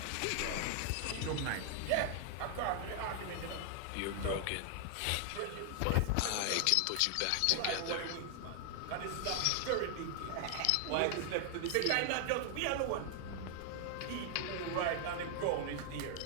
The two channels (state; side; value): different; both; correlation 0.00